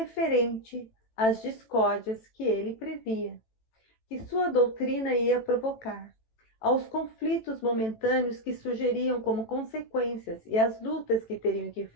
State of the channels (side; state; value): right; late; 18 ms